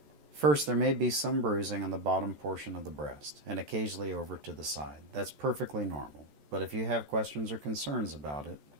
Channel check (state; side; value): late; left; 14 ms